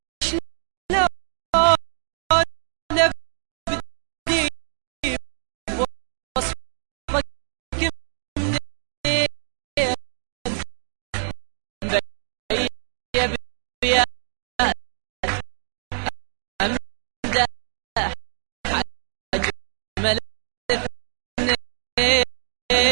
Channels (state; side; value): silent; left; 57 dB below the other